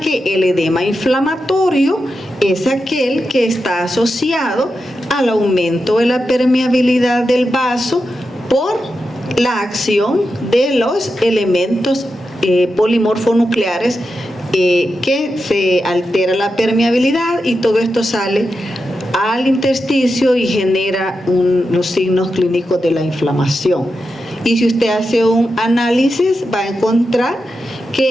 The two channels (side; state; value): both; normal; correlation 0.89